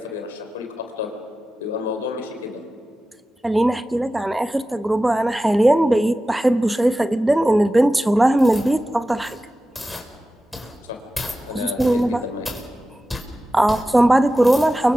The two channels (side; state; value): both; normal; correlation 0.94